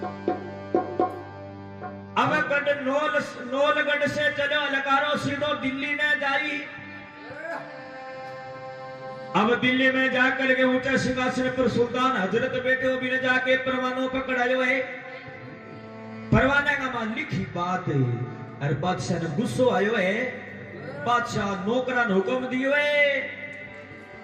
अब गढ़ नौलगढ़ से चलो लकारो सीधो दिल्ली ने जाई। अब दिल्ली में जाकर के ऊंचे सिंहासन पर सुल्तान हजरत बैठे हो भी ने जाके परवानों पकड़ायो है। परवाने का मान लिखी बात है और बादशाह ने गुस्सो आयो है। बादशाह नौकरा ने हुक्म दियो है।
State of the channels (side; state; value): both; identical; correlation 1.00